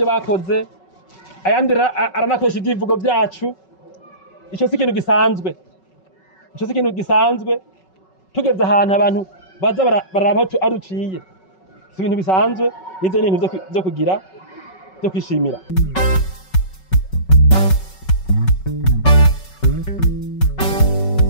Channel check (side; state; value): right; late; 5.3 ms